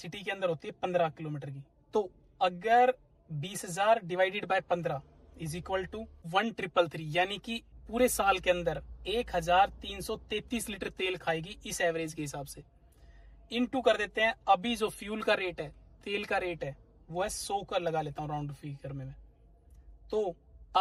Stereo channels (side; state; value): both; identical; correlation 1.00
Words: के अंदर होती है 15 किलोमीटर की। तो अगर 20,000 divided by 15 is equal to 1,333, यानी कि पूरे साल के अंदर 1,333 लीटर तेल खाएगी इस एवरेज के हिसाब से। इनटू कर देते हैं, अभी जो फ्यूल का रेट है, तेल का रेट है, वो है 100 का लगा लेता हूं राउंड फिगर में मैं। तो